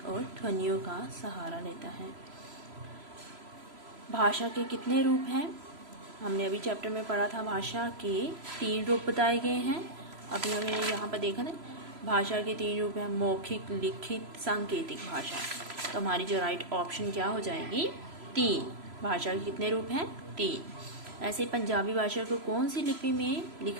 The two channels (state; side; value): late; left; 3.0 ms